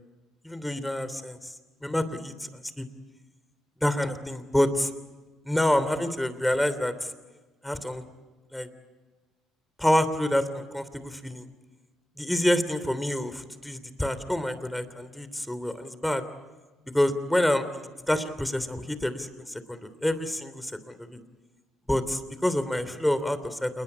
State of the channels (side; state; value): both; normal; correlation 0.95